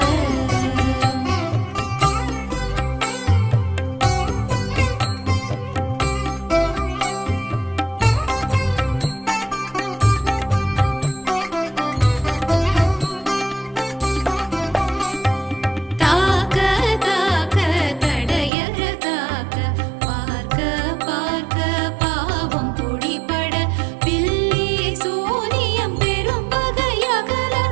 தாக்க தாக்க தடையற தாக்க பார்க்க பார்க்க பாவம் பொடிபட பில்லி சூனியம் பெரும் பகையகல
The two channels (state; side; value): drops out; left; at 18.5 s